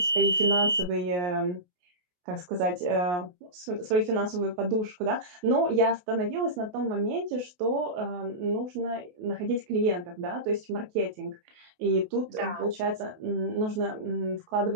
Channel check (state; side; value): late; left; 28 ms